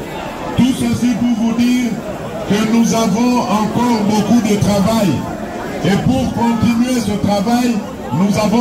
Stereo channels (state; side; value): identical; both; correlation 1.00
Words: Tout ceci pour vous dire que nous avons encore beaucoup de travail. Et pour continuer ce travail, nous